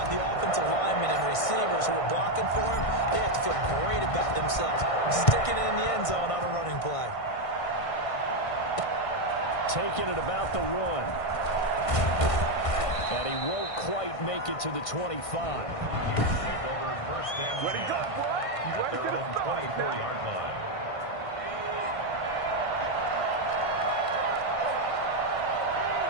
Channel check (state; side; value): late; right; 1.5 ms